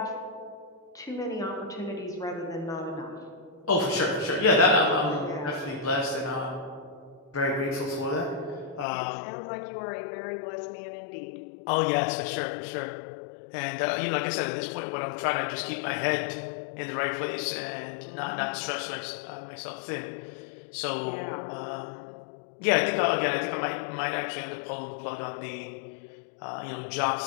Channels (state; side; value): drops out; right; at 8.8 s